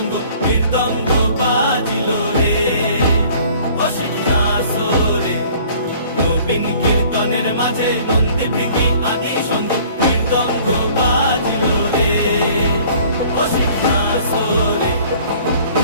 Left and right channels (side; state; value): both; inverted; correlation -0.53